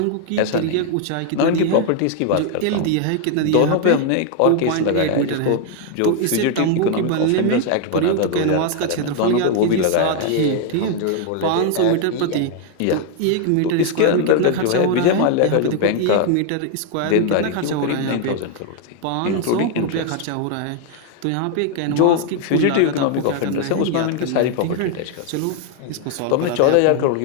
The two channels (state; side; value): different; both; correlation 0.00